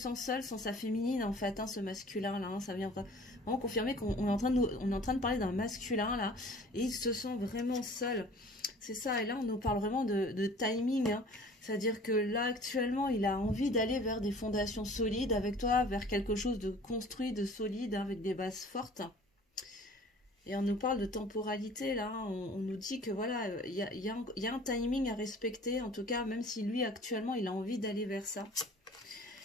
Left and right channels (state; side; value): normal; both; correlation 0.48